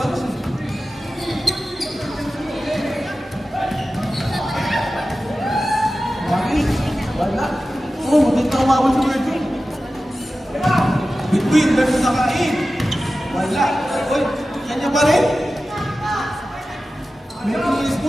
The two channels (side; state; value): both; normal; correlation 0.94